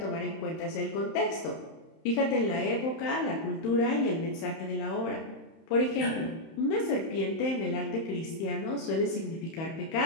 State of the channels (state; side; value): late; right; 31 ms